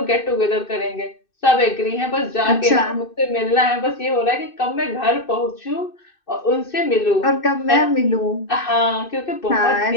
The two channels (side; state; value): right; late; 2.6 ms